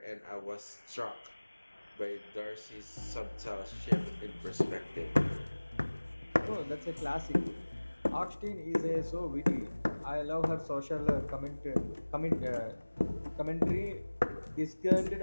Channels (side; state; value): both; inverted; correlation -1.00